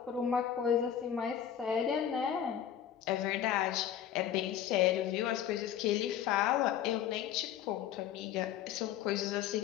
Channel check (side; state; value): right; quieter; 9.9 dB